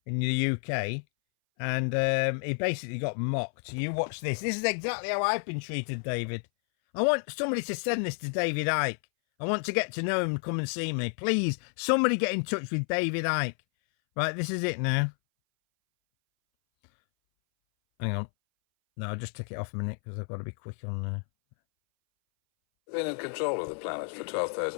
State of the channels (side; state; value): right; silent; 58 dB below the other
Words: in the UK. And he basically got mocked. You watch this. This is exactly how I've been treated, David. I want somebody to send this to David Icke. I want to get to know him and come and see me. Please, somebody get in touch with David Icke. Right, this is it now. Hang on. No, I'll just take it off a minute because I've got to be quick on there. Been in control of the planet for